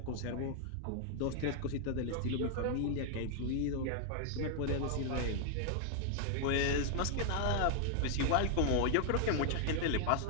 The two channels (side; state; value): both; different; correlation 0.00